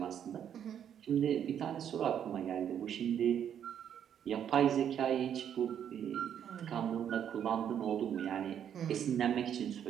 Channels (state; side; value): quieter; left; 9.1 dB